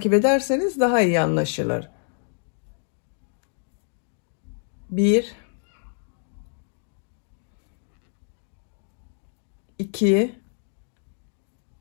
ederseniz daha iyi anlaşılır. 1 2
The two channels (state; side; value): silent; right; digital silence